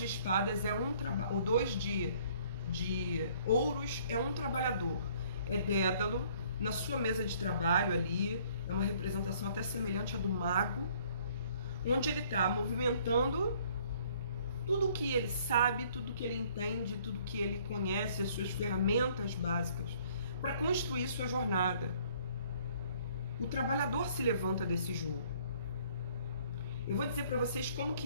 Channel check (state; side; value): inverted; both; correlation -0.60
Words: espadas é o 2 de ouros é um trabalhador. É Dédalo na sua mesa de trabalho ali, é uma representação até semelhante à do mago, onde ele está movimentando tudo o que ele sabe, tudo o que ele entende, tudo o que ele conhece, as suas ferramentas básicas, para construir sua jornada. O trabalhador se levanta desse jogo. Eu vou dizer para vocês como